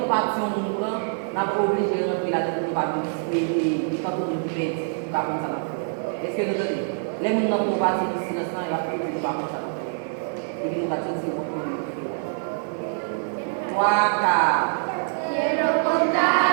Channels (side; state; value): left; silent; digital silence